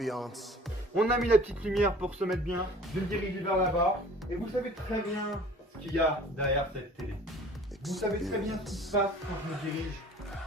On a mis la petite lumière pour se mettre bien. Je me dirige vers là-bas. Et vous savez très bien ce qu'il y a derrière cette télé. Vous savez très bien ce qui se passe quand je me dirige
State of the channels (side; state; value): both; normal; correlation 0.48